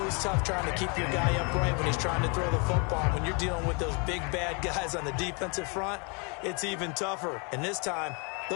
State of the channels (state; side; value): quieter; right; 33.1 dB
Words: tough trying to keep your guy upright when he's trying to throw the football. When you're dealing with those big, bad guys on the defensive front, it's even tougher. And this time,